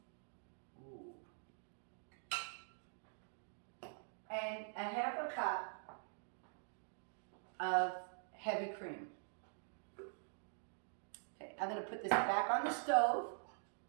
Ooh. And a half a cup of heavy cream. Okay, I'm going to put this back on the stove.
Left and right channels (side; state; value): left; silent; digital silence